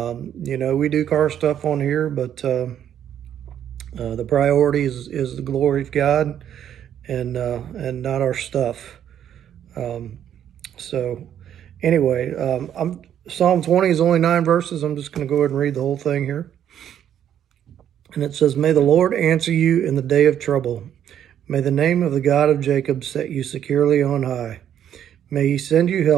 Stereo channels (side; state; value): left; quieter; 10.0 dB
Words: know, we do car stuff on here, but the priority is the glory of God, and not our stuff. So anyway, Psalm 20 is only 9 verses. I'm just going to go ahead and read the whole thing here. And it says, "May the Lord answer you in the day of trouble. May the name of the God of Jacob set you securely on high. May he send you